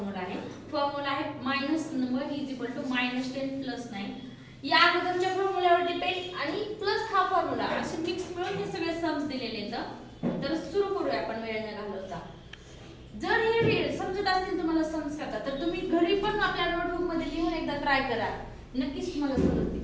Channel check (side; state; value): both; identical; correlation 1.00